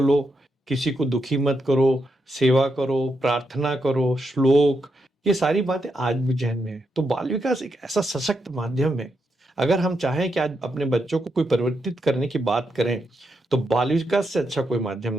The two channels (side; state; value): both; normal; correlation 0.83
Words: किसी को दुखी मत करो, सेवा करो, प्रार्थना करो, श्लोक, ये सारी बातें आज भी जहन में है। तो बाल विकास एक ऐसा सशक्त माध्यम है। अगर हम चाहें कि आज अपने बच्चों को कोई परिवर्तित करने की बात करें, तो बाल विकास से अच्छा कोई माध्यम